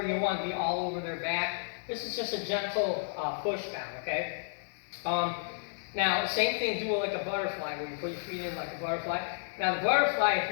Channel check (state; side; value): silent; right; digital silence